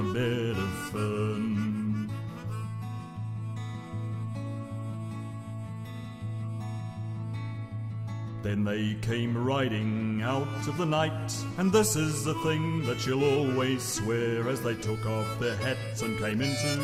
bed of fern. Then they came riding out of the night, and this is the thing that she'll always swear, as they took off their hats and came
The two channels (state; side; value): identical; both; correlation 1.00